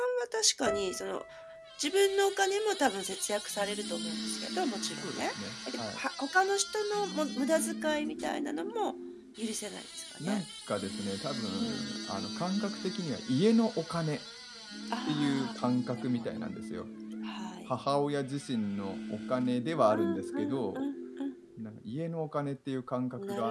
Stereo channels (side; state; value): both; identical; correlation 1.00